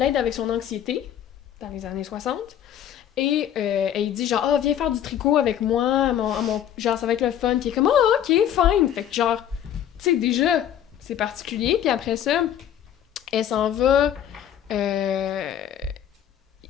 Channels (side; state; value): right; quieter; 10.2 dB